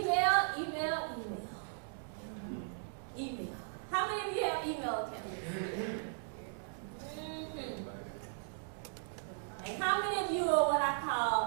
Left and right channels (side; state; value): left; silent; digital silence